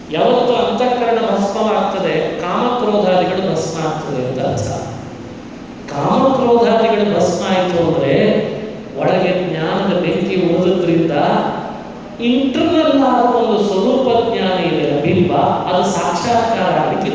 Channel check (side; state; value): both; identical; correlation 1.00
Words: ಯಾವತ್ತು ಅಂತಃಕರಣ ಭಸ್ಮವಾಗ್ತದೆ, ಕಾಮಕ್ರೋಧಾದಿಗಳು ಭಸ್ಮ ಆಗ್ತದೆ ಅಂತ ಅರ್ಥ. ಕಾಮಕ್ರೋಧಾದಿಗಳು ಭಸ್ಮ ಆಯಿತು ಅಂದರೆ ಒಳಗೆ ಜ್ಞಾನದ ಬೆಂಕಿ ಉಳಿದ್ರಿಂದ ಇಂಟರ್ನಲ್ ಆದ ಒಂದು ಸ್ವರೂಪ ಜ್ಞಾನ ಇದೆ, ಬಿಂಬ, ಅದು ಸಾಕ್ಷಾತ್ಕಾರ ಆಗಲಿಕ್ಕೆ